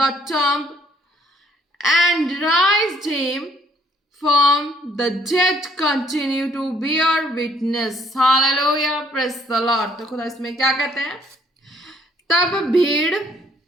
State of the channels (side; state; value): both; normal; correlation 0.64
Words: tomb and raised him from the dead continue to bear witness. Hallelujah. Praise the Lord. तो खुदा इसमें क्या कहते हैं? तब भीड़